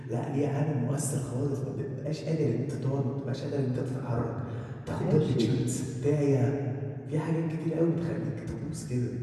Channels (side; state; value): both; identical; correlation 1.00